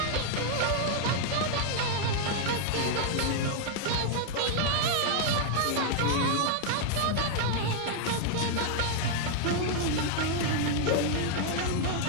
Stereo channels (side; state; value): both; different; correlation -0.01